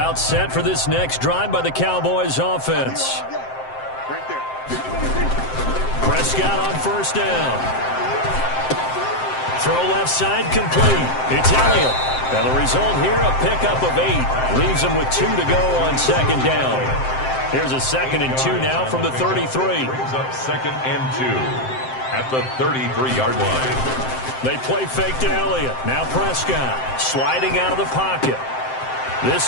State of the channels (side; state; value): right; late; 7.7 ms